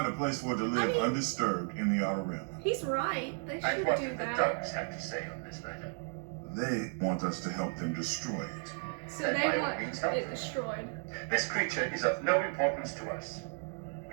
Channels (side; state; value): left; silent; 55 dB below the other